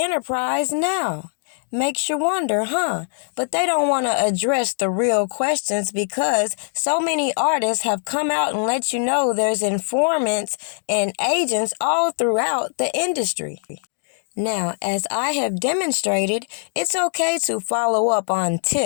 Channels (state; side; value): silent; right; digital silence